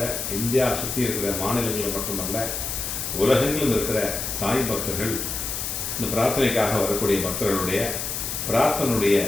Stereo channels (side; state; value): left; noise; hiss, 4 dB below the sound